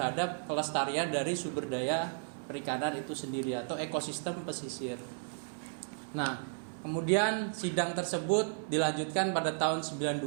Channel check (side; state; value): left; silent; 55 dB below the other